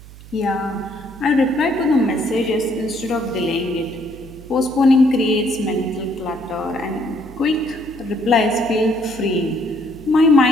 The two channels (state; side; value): noise; right; hum, 18 dB below the sound